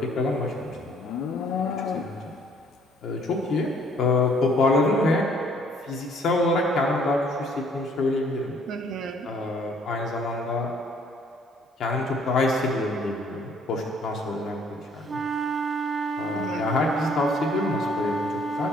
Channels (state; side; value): normal; both; correlation 0.61